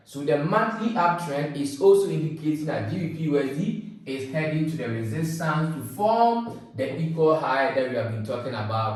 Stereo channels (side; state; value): both; identical; correlation 1.00